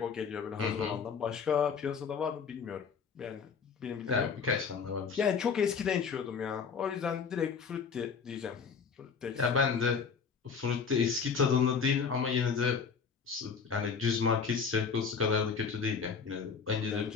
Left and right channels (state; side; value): quieter; right; 5.9 dB